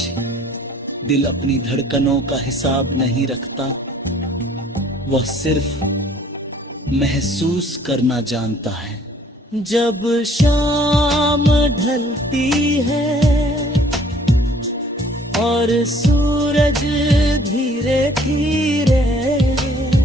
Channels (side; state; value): both; normal; correlation 0.57